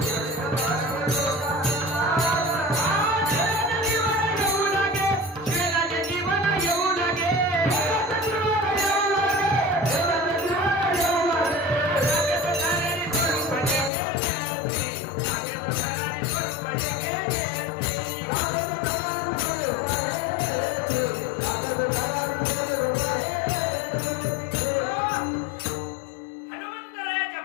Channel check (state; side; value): drops out; right; at 13.9 s